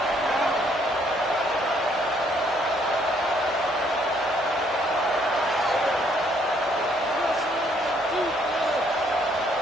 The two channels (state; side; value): normal; both; correlation 0.67